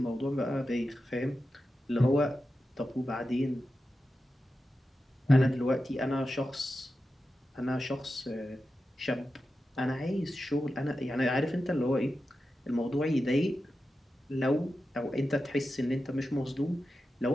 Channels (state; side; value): normal; both; correlation 0.91